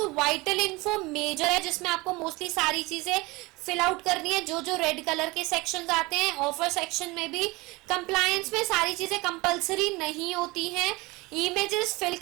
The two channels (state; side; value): quieter; left; 23.2 dB